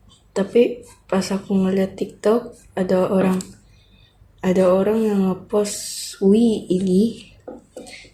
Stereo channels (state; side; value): identical; both; correlation 1.00